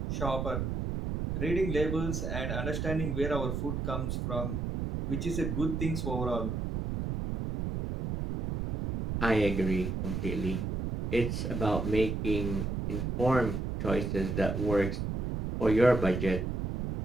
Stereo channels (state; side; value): noise; right; rumble, 2 dB below the sound